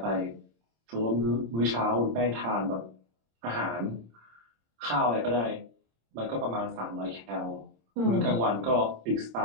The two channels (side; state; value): left; late; 26 ms